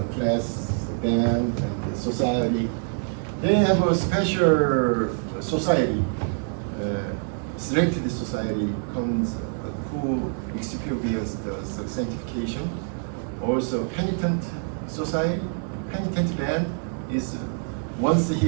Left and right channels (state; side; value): silent; left; 61 dB below the other